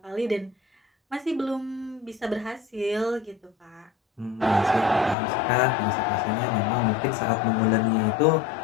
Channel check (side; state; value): right; drops out; at 5.2 s